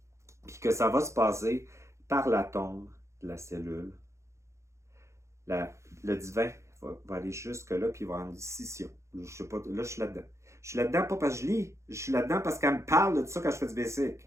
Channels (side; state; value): left; late; 0.14 ms